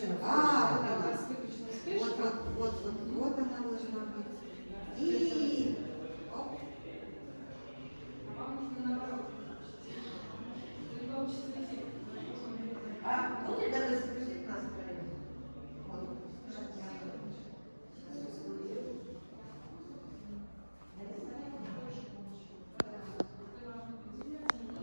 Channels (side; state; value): both; inverted; correlation -1.00